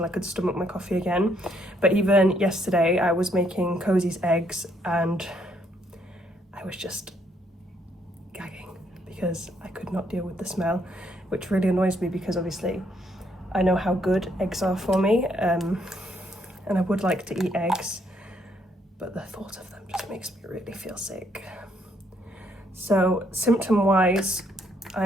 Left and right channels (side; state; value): both; normal; correlation 0.71